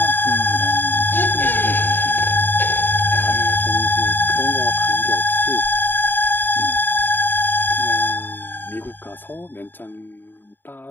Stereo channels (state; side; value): late; right; 0.094 ms